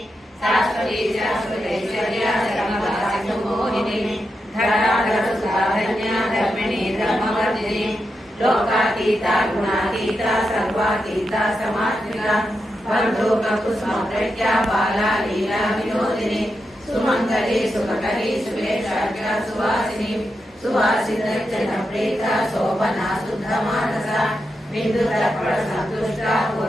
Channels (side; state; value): both; normal; correlation 0.86